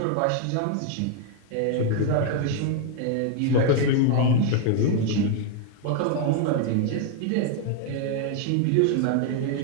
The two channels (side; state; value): both; different; correlation 0.00